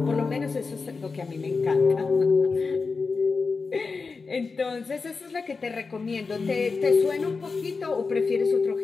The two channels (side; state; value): right; quieter; 4.5 dB